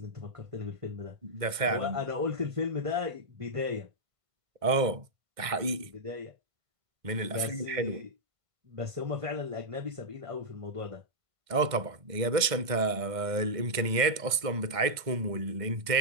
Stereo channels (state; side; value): late; left; 1.5 ms